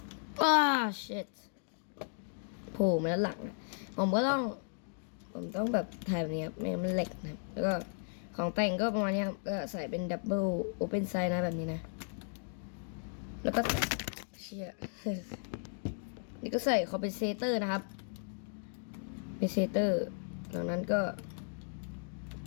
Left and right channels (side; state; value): right; silent; digital silence